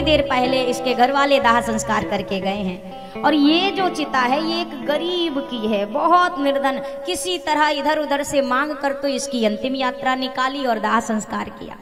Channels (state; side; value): identical; both; correlation 1.00